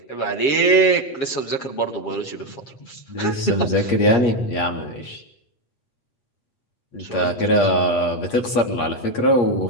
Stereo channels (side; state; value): right; late; 8.5 ms